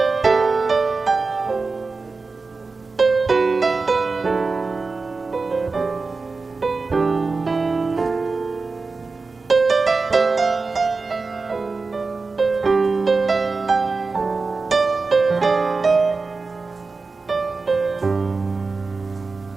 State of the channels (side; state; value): left; quieter; 4.1 dB